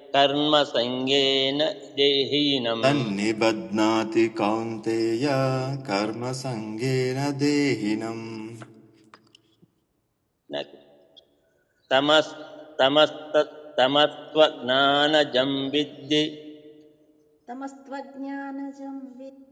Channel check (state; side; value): identical; both; correlation 1.00